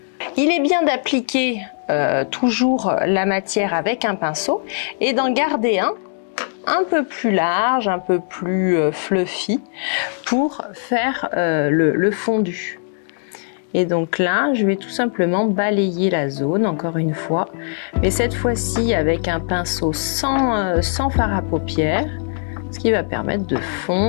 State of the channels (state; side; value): silent; right; digital silence